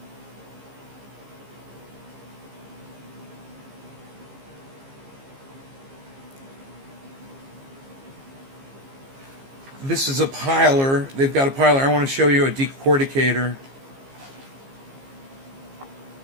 this is a piler. They've got a piler. I want to show you a decorticator.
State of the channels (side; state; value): left; late; 15 ms